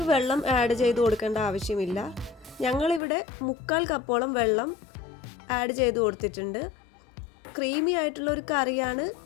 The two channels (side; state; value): right; drops out; at 3.0 s